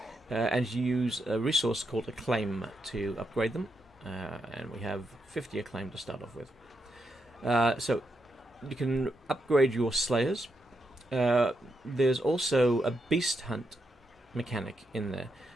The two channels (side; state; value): both; normal; correlation 0.83